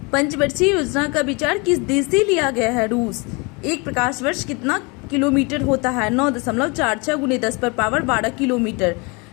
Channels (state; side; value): quieter; right; 29.2 dB